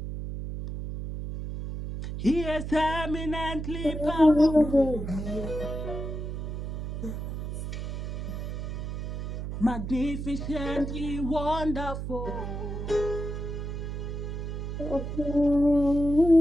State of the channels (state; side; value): noise; right; hum, 5 dB below the sound